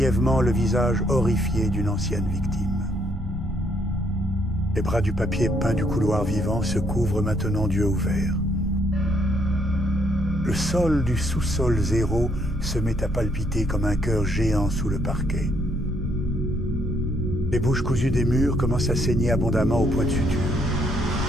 le visage horrifié d'une ancienne victime. Les bras du papier peint du couloir vivant se couvrent maintenant d'yeux ouverts. Le sol du sous-sol 0 se met à palpiter comme un cœur géant sous le parquet. Les bouches cousues des murs commencent à saigner abondamment au point de suture.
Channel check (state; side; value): normal; both; correlation 0.70